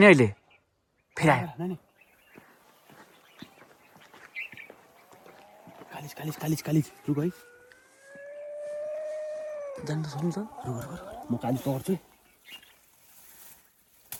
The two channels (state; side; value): identical; both; correlation 1.00